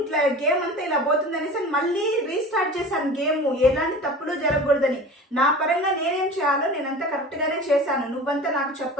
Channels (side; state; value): both; normal; correlation 0.37